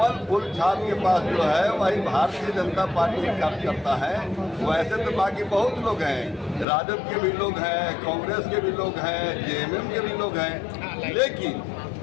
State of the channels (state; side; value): drops out; right; at 6.7 s